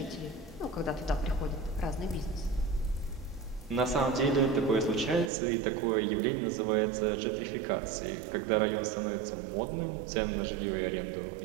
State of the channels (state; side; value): drops out; left; at 5.3 s